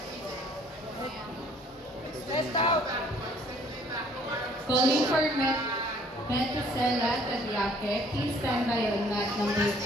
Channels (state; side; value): normal; both; correlation 0.59